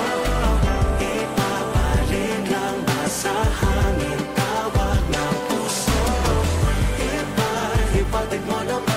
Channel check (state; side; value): identical; both; correlation 1.00